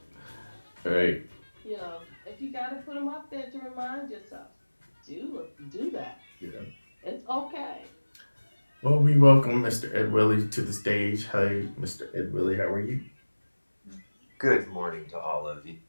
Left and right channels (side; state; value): both; inverted; correlation -1.00